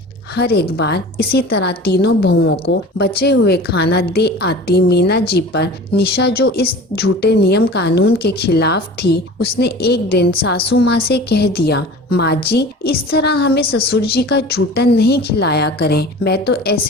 हर एक बार इसी तरह तीनों बहुओं को बचे हुए खाना दे आती मीना जी पर निशा, जो इस झूठे नियम कानून के खिलाफ थी, उसने एक दिन सासू माँ से कह दिया, माँ जी इस तरह हमें ससुर जी का जूठन नहीं खिलाया करें। मैं तो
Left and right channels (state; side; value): normal; both; correlation 0.39